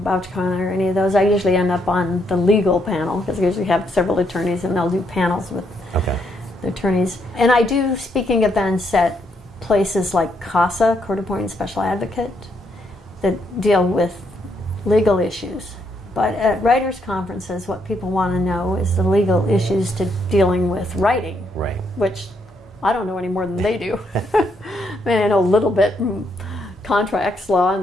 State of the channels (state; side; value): normal; both; correlation 0.75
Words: or any of those, I usually end up on the legal panel because I usually have several attorneys and they'll do panels with the attorneys. And I do speaking events at places like CASA, Court Appointed Special Advocate, that deal with legal issues. But at writers' conferences, what people want to know is the legal issues to dealing with writing, right? Which I don't know any more than they do. I mean, I know a little bit contracts, law,